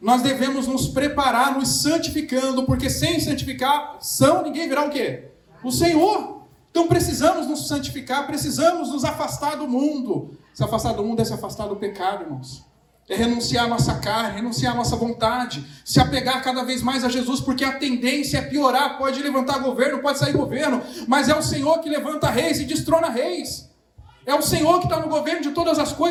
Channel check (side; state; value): both; identical; correlation 1.00